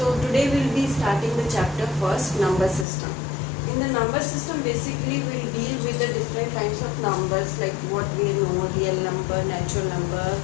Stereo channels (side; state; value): right; drops out; at 2.9 s